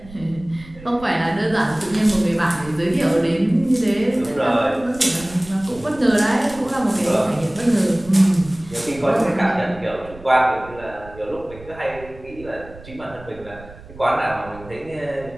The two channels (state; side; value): noise; right; rumble, 19 dB below the sound